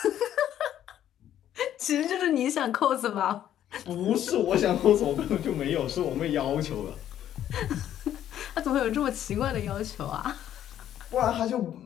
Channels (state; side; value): quieter; right; 11.1 dB